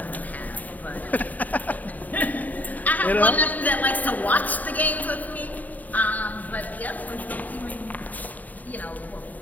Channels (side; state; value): right; late; 0.078 ms